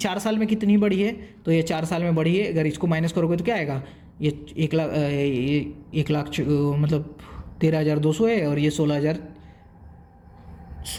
साल में कितनी बढ़ी है, तो ये 4 साल में बढ़ी है। अगर इसको माइनस करोगे तो क्या आएगा, ये 1 लाख मतलब 13,200 है, और ये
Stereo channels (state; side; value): identical; both; correlation 1.00